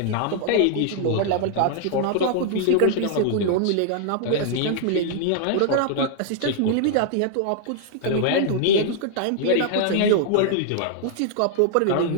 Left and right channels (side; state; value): both; different; correlation -0.01